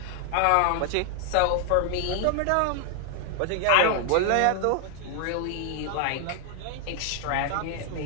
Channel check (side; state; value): both; different; correlation 0.00